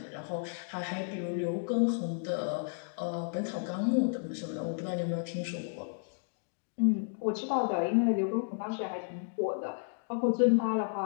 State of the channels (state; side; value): silent; right; digital silence